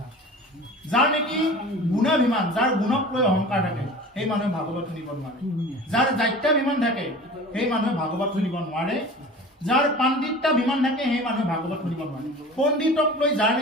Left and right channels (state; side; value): normal; both; correlation 0.39